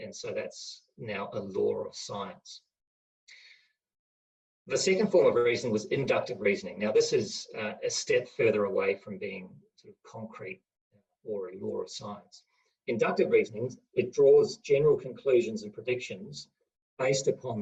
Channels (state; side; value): identical; both; correlation 1.00